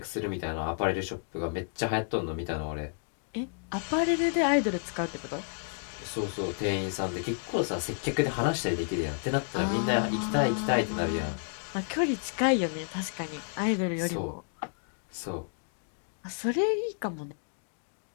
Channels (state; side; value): silent; right; 57 dB below the other